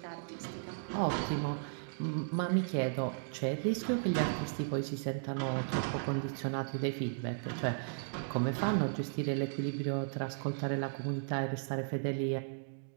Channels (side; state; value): left; silent; digital silence